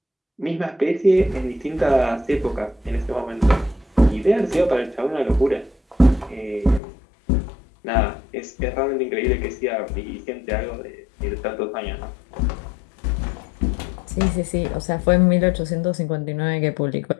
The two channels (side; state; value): right; drops out; at 6.8 s